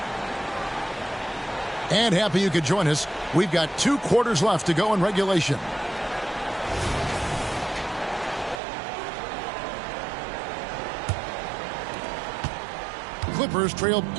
And happy you could join us. We've got 2 quarters left to go in regulation. Clippers trailed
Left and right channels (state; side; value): drops out; left; at 8.6 s